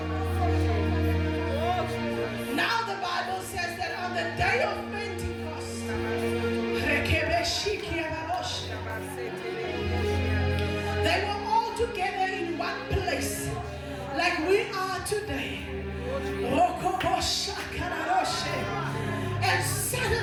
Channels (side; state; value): both; identical; correlation 1.00